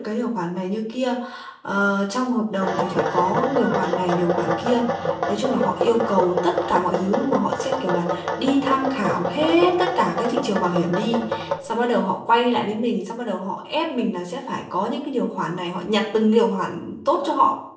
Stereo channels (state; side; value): identical; both; correlation 1.00